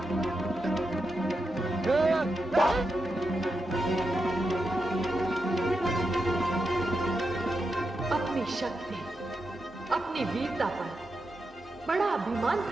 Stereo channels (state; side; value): normal; both; correlation 0.87